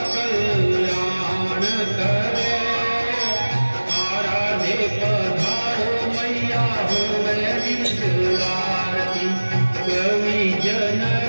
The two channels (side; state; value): both; inverted; correlation -1.00